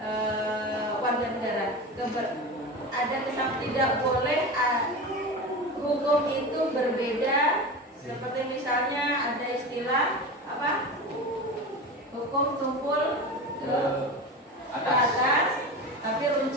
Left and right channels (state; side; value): normal; both; correlation 0.27